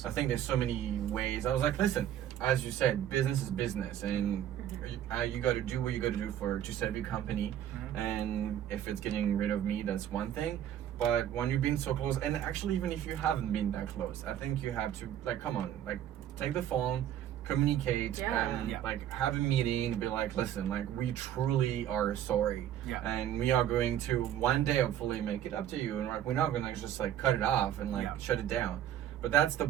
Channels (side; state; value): left; quieter; 10.9 dB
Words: think there's so many ways. I was like, listen, as you said, business is business, and you got to do what you got to do to save your company. Mhm. And if it's getting rid of me, that's one thing. But when you've been so close, and actually even if you haven't been that close, I think you have to like come on, like take the phone, communicate and Yeah. like have a meeting, be like, listen, like we truly are sorry, and we are going to one day hopefully make it up to you, and like we're not gonna just like cut it off and like shut it down. But that's the